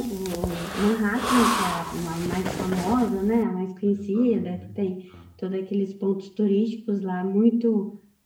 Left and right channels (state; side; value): identical; both; correlation 1.00